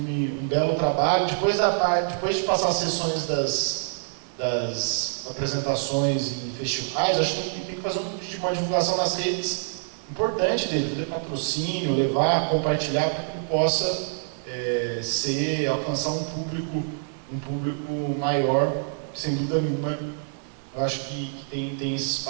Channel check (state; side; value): silent; left; digital silence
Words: um belo trabalho. Depois de passar as sessões das apresentações em festivais, acho que tem que fazer uma divulgação nas redes importante dele, fazer patrocínio, levar, compartilhar, para que ele possa alcançar um público maior, sem dúvida nenhuma. Eu acho que tem esse